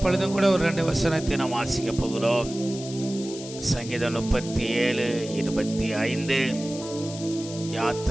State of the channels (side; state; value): left; noise; hiss, 13 dB below the sound